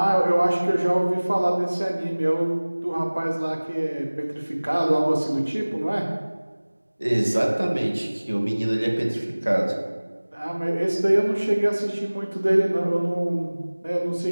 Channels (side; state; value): both; inverted; correlation -1.00